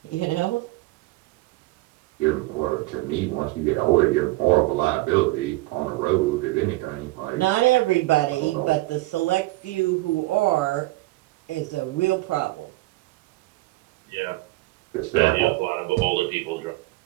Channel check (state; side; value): quieter; left; 20.2 dB